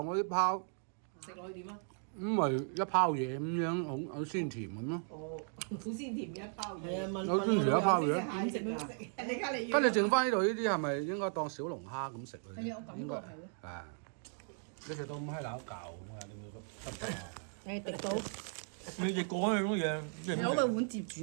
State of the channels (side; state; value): left; silent; 53 dB below the other